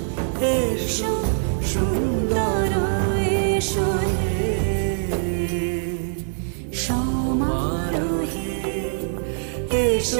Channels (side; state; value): left; silent; digital silence